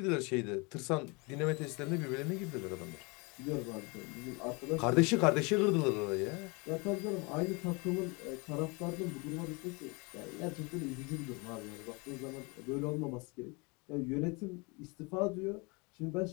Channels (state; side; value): quieter; right; 29.1 dB